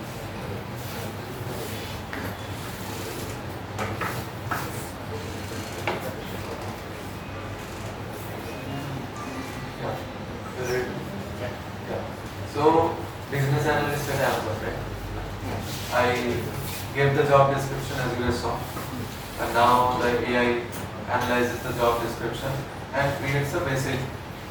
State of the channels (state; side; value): identical; both; correlation 1.00